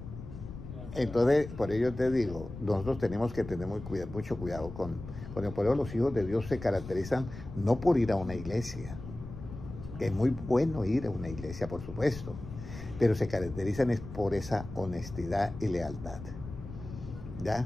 Entonces, por ello te digo, nosotros tenemos que tener mucho cuidado con el poder. Los hijos de Dios se caracterizan no por ir a una iglesia, que es muy bueno ir a una iglesia, por supuesto, pero se caracterizan es por esa honestidad y lealtad.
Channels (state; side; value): noise; left; rumble, 12 dB below the sound